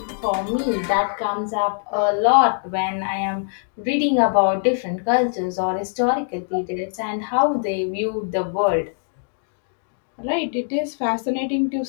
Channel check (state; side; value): silent; right; digital silence